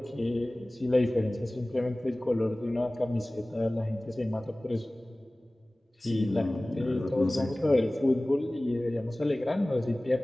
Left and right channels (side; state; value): both; normal; correlation 0.98